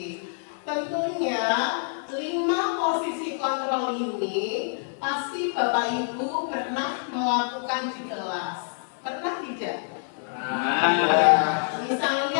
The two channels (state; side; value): silent; right; 61 dB below the other